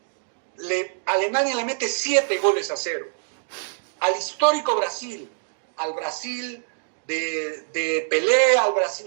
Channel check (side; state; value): left; silent; 62 dB below the other